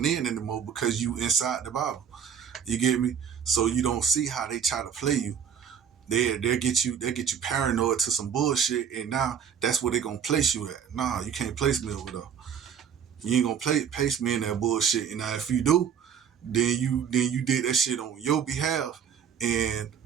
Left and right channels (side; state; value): left; quieter; 7.8 dB